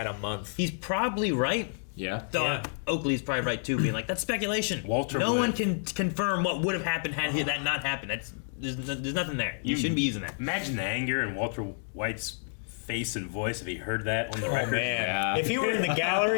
a month. He's probably right. Yeah. Oakley's probably right too, being like, that's speculation. Walter no would. one can confirm what would have happened had that not happened. There's nothing there. You shouldn't be using that. Imagine the anger in Walter White's face and voice if he heard that on the record. Man. Yeah. If he were in the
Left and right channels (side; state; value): right; silent; digital silence